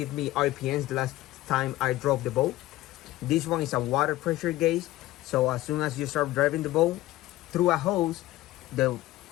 me RPMs the last time I drove the boat. This one is a water pressure gauge, so as soon as you start driving the boat through a hose,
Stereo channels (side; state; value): right; quieter; 16.6 dB